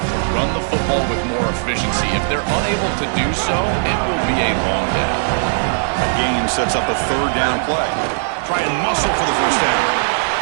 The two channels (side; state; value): left; silent; digital silence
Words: run the football with more efficiency. If they're unable to do so, it will be a long day. A gain sets up a third down play. Try and muscle for the first down.